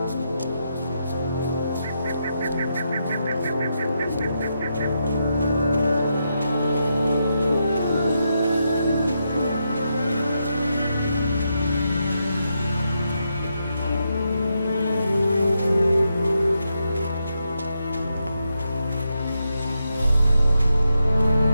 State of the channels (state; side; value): inverted; both; correlation -0.83